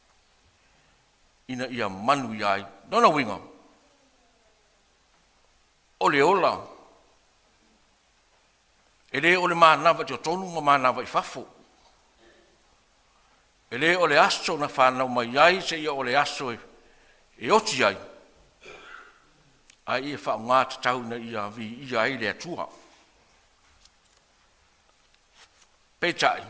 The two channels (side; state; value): both; identical; correlation 1.00